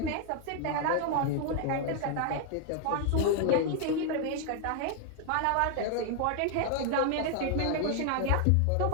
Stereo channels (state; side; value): different; both; correlation 0.00